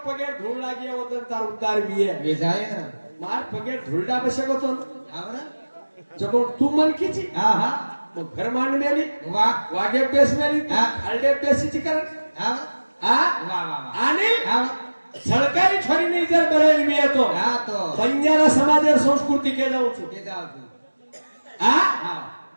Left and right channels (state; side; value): inverted; both; correlation -1.00